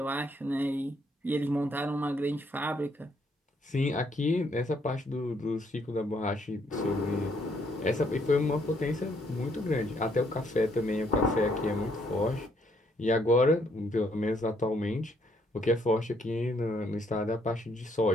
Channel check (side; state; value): both; normal; correlation 0.70